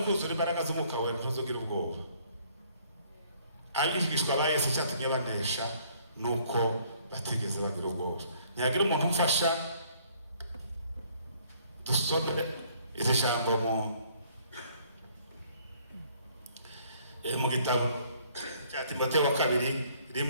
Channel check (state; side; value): inverted; both; correlation -0.61